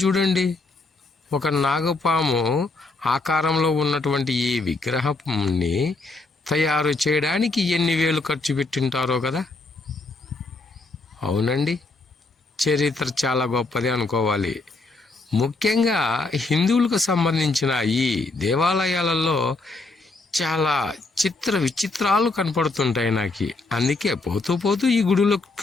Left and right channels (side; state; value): right; quieter; 3.4 dB